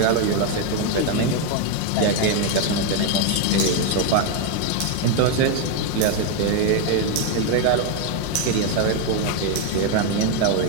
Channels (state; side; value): different; both; correlation 0.01